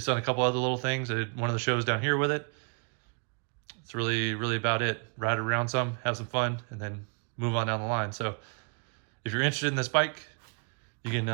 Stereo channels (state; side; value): quieter; left; 39.2 dB